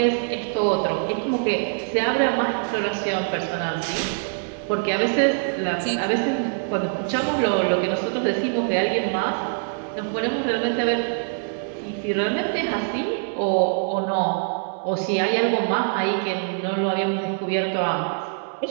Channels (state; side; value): silent; left; 63 dB below the other